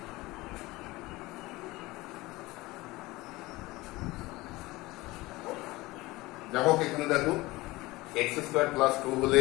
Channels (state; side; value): quieter; right; 20.5 dB